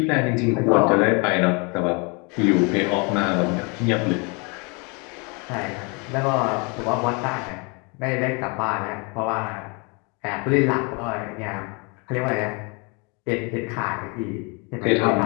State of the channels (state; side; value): quieter; right; 32.1 dB